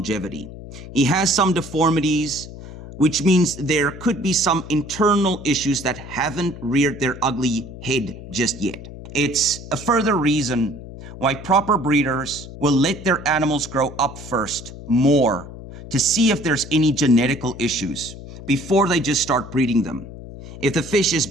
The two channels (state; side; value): noise; left; hum, 13 dB below the sound